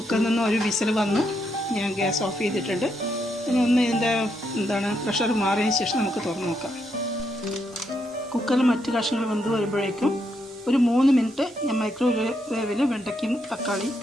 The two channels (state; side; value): normal; both; correlation 0.79